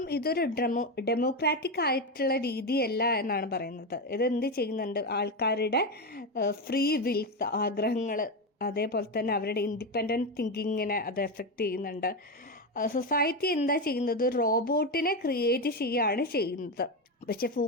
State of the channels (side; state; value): both; normal; correlation 0.13